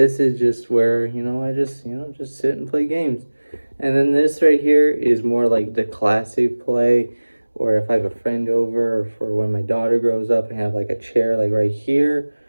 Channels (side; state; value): both; inverted; correlation -1.00